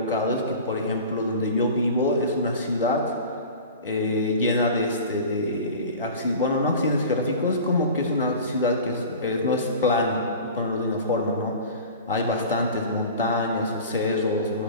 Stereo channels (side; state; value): both; inverted; correlation -0.37